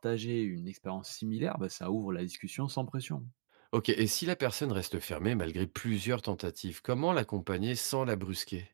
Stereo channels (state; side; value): silent; left; digital silence